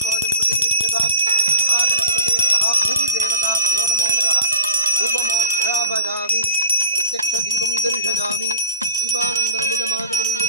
प्रतिष्ठितां महागणपतये नमः. भूमिदेवताभ्यो नमो नमः. धूपमाघ्रापयामि. प्रत्यक्षदीपं दर्शयामि. दीपानन्दरमिदमादवं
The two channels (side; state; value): both; inverted; correlation -0.43